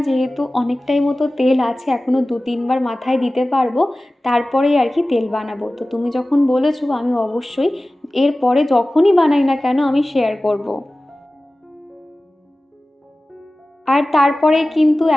যেহেতু অনেকটাই মতো তেল আছে, এখনও 2-3 বার মাথায় দিতে পারবো, তারপরেই আর কি তেল বানাবো। তো তুমি যখন বলেছো আমি অবশ্যই এরপরে যখনই বানাই না কেন আমি শেয়ার করব। আর তারপরে কিন্তু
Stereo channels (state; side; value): normal; both; correlation 0.97